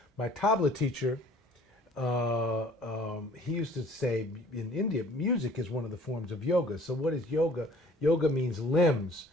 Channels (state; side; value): normal; both; correlation 0.53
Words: my tabla teacher, he used to say in India, music is one of the forms of yoga. So what is yoga? Yoga means limbs,